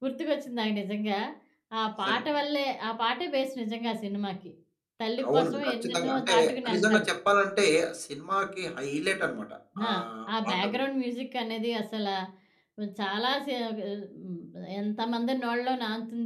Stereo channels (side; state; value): both; identical; correlation 1.00